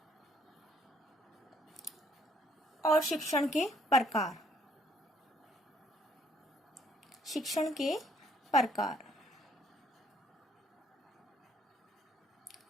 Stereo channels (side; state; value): both; normal; correlation 0.66